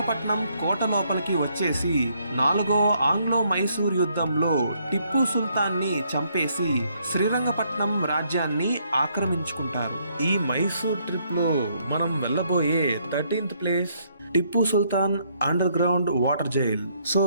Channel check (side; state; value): both; inverted; correlation -0.70